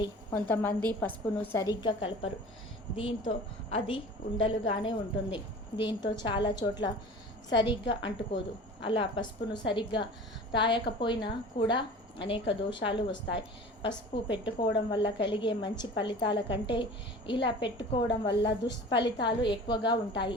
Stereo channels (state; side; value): normal; both; correlation 0.40